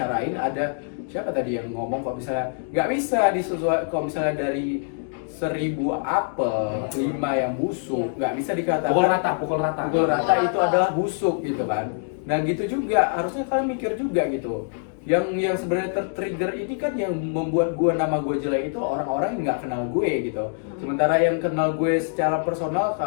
ada siapa tadi yang ngomong kok misalnya nggak bisa disesuaikan, kalau misalnya dari 1000 apel 5 yang busuk, nggak bisa dikatakan Pukul rata. pukul rata itu adalah busuk gitu kan. Nah gitu juga harusnya kalian mikir juga gitu. Yang sebenarnya tertrigger ini kan yang membuat nama gue jelek itu orang-orang yang nggak kenal gue gitu. Sementara yang kenal gue secara personal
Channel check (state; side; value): silent; right; digital silence